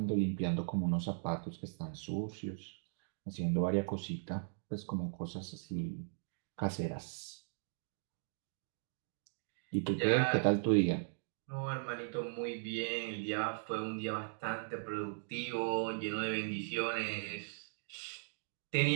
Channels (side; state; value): left; silent; digital silence